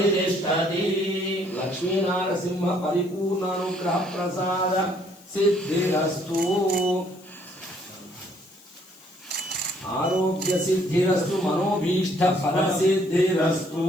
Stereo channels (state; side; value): noise; left; hiss, 25 dB below the sound